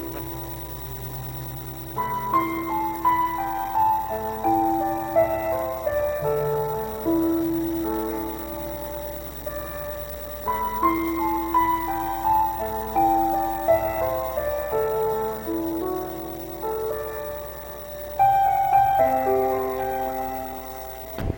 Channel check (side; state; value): both; identical; correlation 1.00